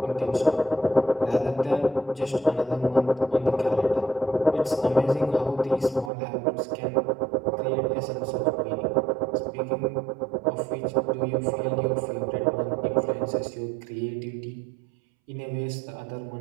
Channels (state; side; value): drops out; left; at 6.1 s